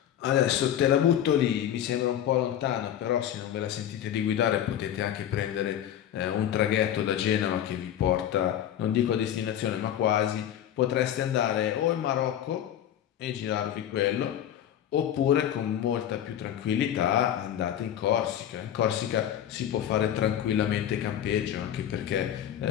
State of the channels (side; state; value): right; quieter; 10.6 dB